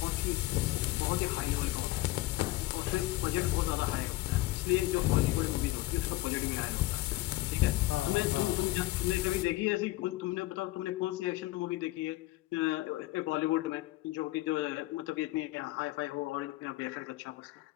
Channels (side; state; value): right; quieter; 18.2 dB